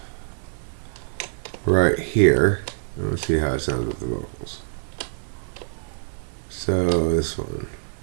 right here. Let's see how it sounds with the vocals. So this one.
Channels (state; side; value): silent; left; digital silence